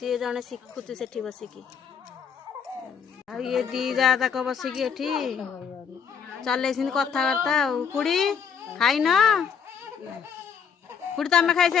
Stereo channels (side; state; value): right; quieter; 6.9 dB